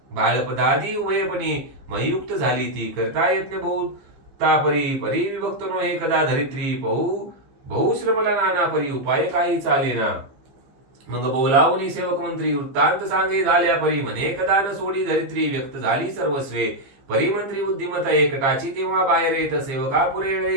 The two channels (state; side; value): late; left; 15 ms